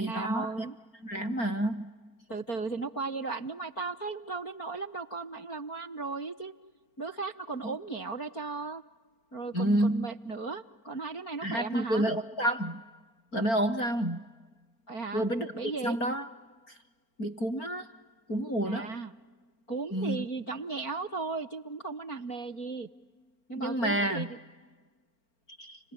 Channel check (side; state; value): right; late; 4.4 ms